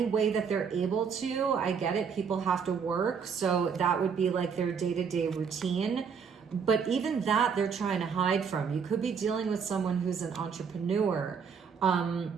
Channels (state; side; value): quieter; left; 6.4 dB